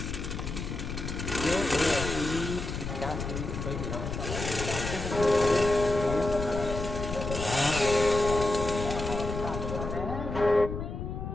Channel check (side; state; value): left; noise; rumble, 5 dB below the sound